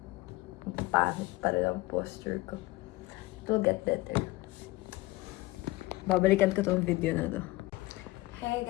Pangit pa rin ang posture ko. It will get better. Babalikan ko tong video na to. Hey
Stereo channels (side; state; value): right; quieter; 19.6 dB